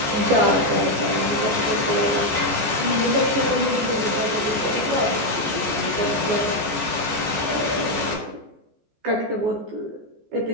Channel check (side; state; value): left; late; 14 ms